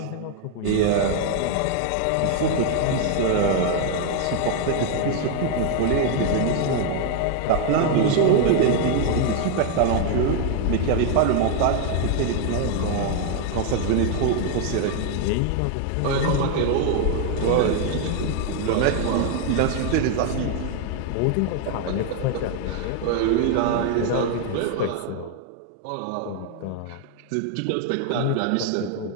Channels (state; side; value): different; both; correlation 0.00